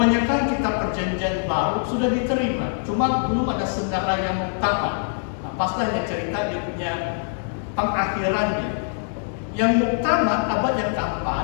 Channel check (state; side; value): silent; right; digital silence